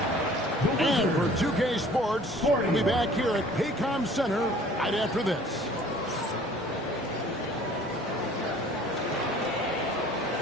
And for 2K Sports, we'll be back here at Paycom Center right after this.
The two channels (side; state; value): both; normal; correlation 0.51